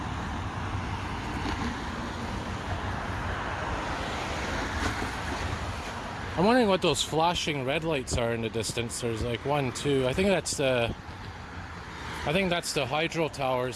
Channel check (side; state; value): both; identical; correlation 1.00